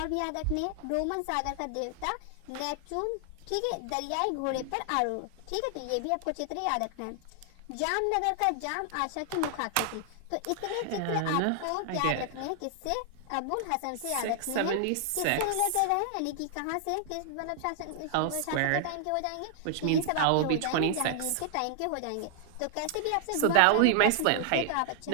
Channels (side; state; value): both; different; correlation 0.00